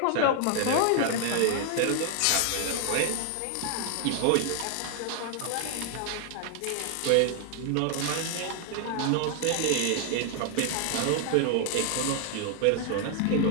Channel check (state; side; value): different; both; correlation 0.00